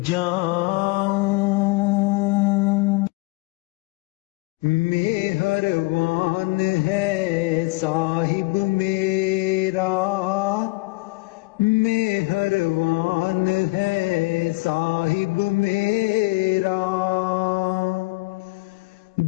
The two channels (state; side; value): quieter; right; 24.4 dB